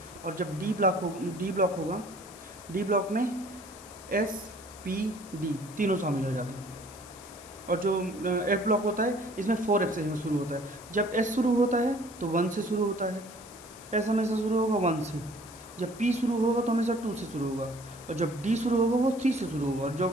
और जब डी ब्लॉक होगा, डी ब्लॉक में एस पी डी तीनों शामिल हो जाते हैं। और जो एफ ब्लॉक होता है इसमें 4f से शुरू होता है। जब एस शुरू होता है तो 1 से शुरू होता है, एस हमेशा शुरू होगा 1 से। जब पी शुरू होगा तो हमेशा 2 से शुरू होगा, और जब डी शुरू होगा वो 3 से शुरू होगा, और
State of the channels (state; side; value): noise; left; hiss, 19 dB below the sound